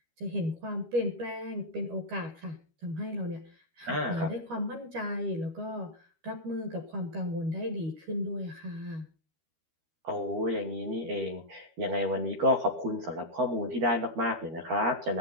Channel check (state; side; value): late; left; 13 ms